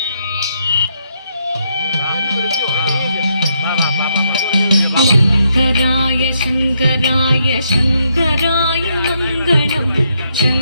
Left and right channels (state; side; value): inverted; both; correlation -0.76